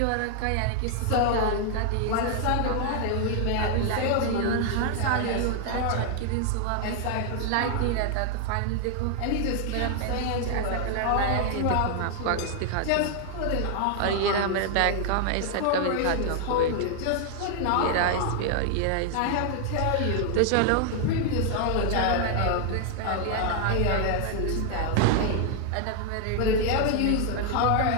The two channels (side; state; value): both; different; correlation 0.00